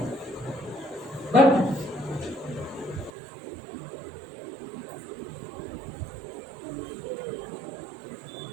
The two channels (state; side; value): drops out; left; at 3.1 s